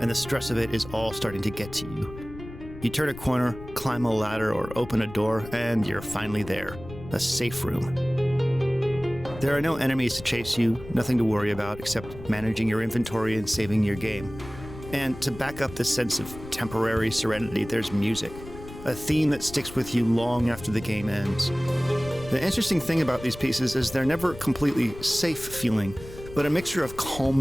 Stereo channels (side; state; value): left; noise; rumble, 14 dB below the sound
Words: the stress of it is all starting to get to you. You turn a corner, climb a ladder, or open a door, and you're finally there. A safe room. There are no enemies to chase you, nothing to worry about except managing your inventory and saving your game. And to back up this sense of temporary serenity, there's music. A theme that sticks with you long after the game ends. The interesting thing about these pieces is they're never completely safe feeling, but a mixture of